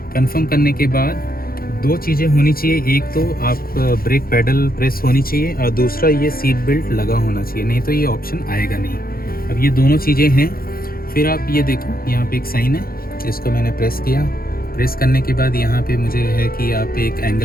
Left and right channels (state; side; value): late; right; 0.43 ms